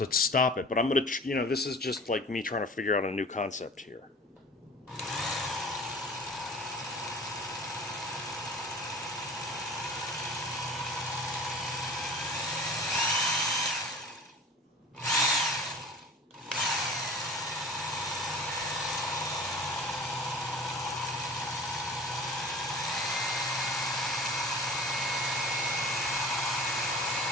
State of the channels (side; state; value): both; normal; correlation 0.41